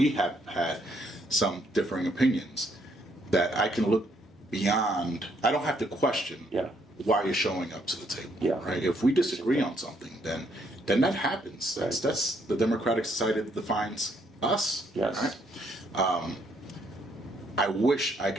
have had some differing opinions, that I can look beyond. I don't have to question Yeah. why you're showing up to the table. Yeah. Right. If we disagree on something, then that happens. That's the democratic society that defines us. Yes. Right. I wish I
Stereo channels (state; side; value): normal; both; correlation 0.71